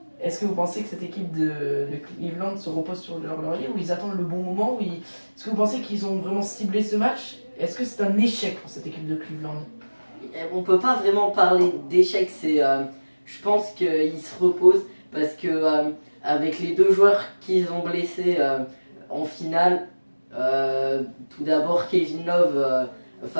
Est-ce que vous pensez que cette équipe de Cleveland se repose sur leur laurier ou ils attendent le bon moment Est-ce que vous pensez qu'ils ont vraiment ciblé ce match? Est-ce que c'est un échec pour cette équipe de Cleveland? On peut pas vraiment parler d'échec, je pense qu'ils se reposent parce que avec les 2 joueurs qu'ils ont blessés en finale, tout d'abord Kevin Love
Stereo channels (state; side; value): inverted; both; correlation -1.00